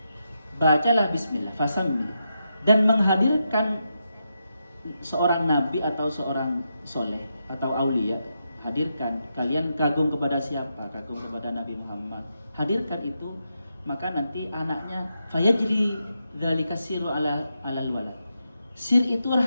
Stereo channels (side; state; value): both; inverted; correlation -0.84